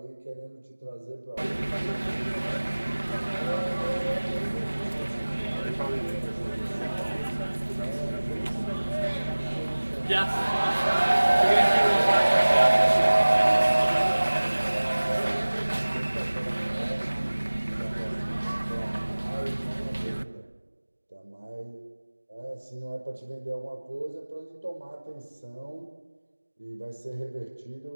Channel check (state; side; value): inverted; both; correlation -1.00